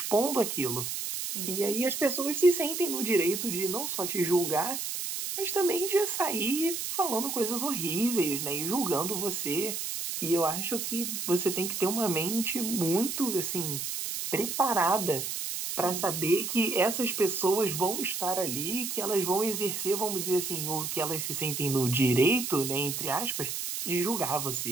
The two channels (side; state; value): right; noise; hiss, 4 dB below the sound